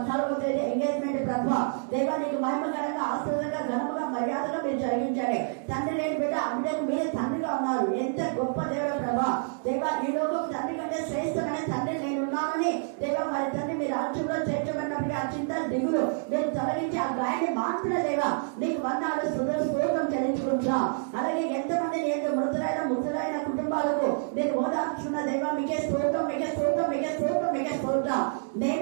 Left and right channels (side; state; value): left; silent; digital silence